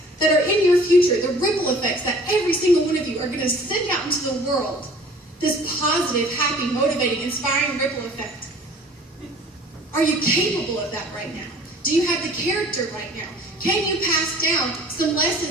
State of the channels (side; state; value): both; normal; correlation 0.49